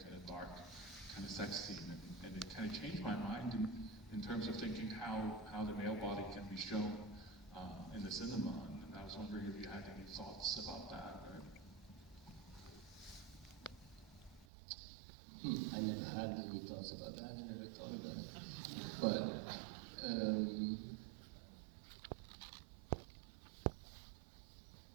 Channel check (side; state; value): left; drops out; at 14.5 s